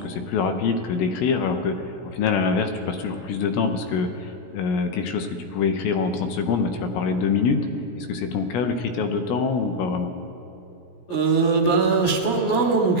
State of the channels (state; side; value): late; right; 17 ms